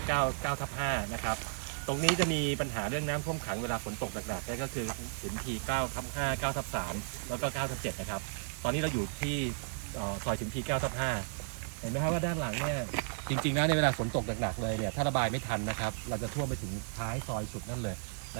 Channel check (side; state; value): left; silent; 55 dB below the other